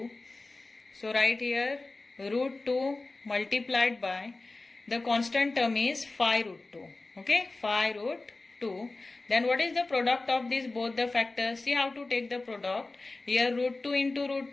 So right here root 2 multiplied by the constant term is 5 root 2. Okay, 5 root 2. Then what is the product of these both the factors? See how to take the product. Here root 2 into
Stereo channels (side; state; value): right; quieter; 3.3 dB